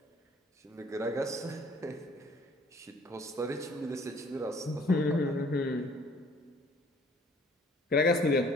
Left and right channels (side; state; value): both; normal; correlation 0.55